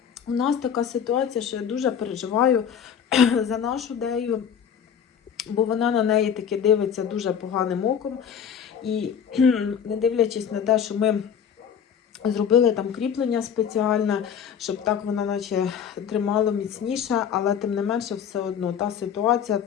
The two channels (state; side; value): quieter; right; 8.0 dB